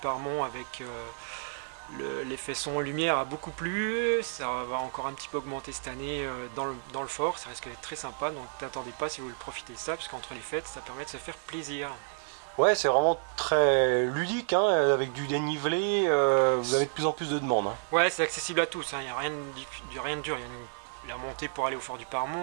avec l'effet son lumière a beaucoup plu. Ça va encore un petit peu augmenter cette année dans le fort. Ça risque d'être très sympa. Donc n'attendez pas si vous voulez profiter de ça parce qu'entre les fêtes, ça permet de se faire plaisir. Ouais, c'est vraiment très ludique, hein, avec du dénivelé. Vous avez de plus en plus de demandes. Hein. Ouais, c'est accessible à tous. Il n'y a rien de dur. Il y a la montée pour aller au Fort du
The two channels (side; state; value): left; silent; 57 dB below the other